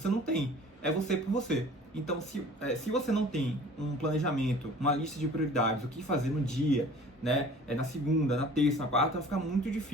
não tem, é você por você. Então, se você não tem um planejamento, uma lista de prioridades, o que fazer no dia, né, na segunda, na terça, na quarta, vai ficar muito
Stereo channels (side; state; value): both; normal; correlation 0.46